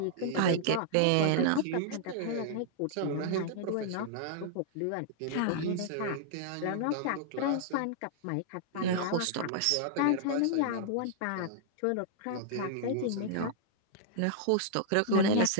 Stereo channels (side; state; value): both; different; correlation -0.01